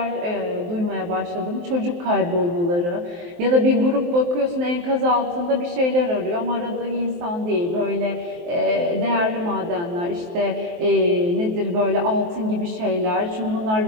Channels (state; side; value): late; left; 23 ms